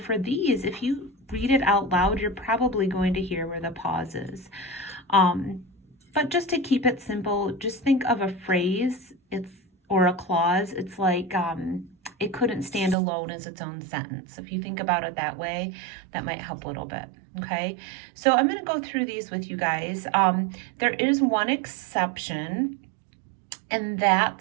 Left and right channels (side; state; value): left; drops out; at 13.0 s